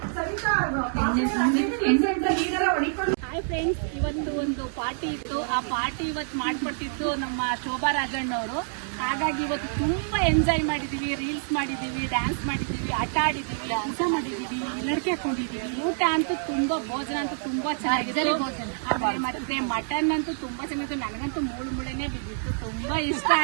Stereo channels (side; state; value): left; silent; digital silence